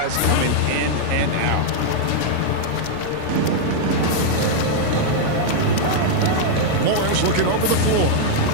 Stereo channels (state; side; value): different; both; correlation -0.01